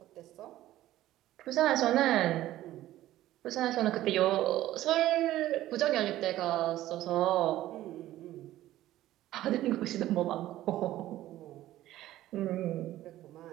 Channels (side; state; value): left; quieter; 14.5 dB